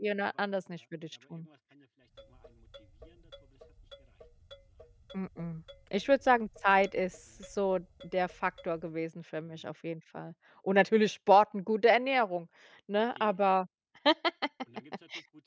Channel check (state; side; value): identical; both; correlation 1.00